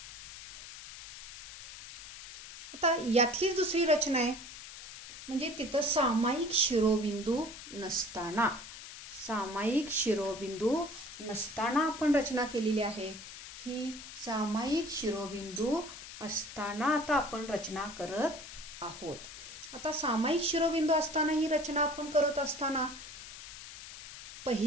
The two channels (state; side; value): noise; left; hiss, 13 dB below the sound